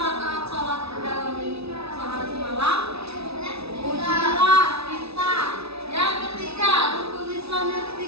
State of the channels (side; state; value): left; late; 0.78 ms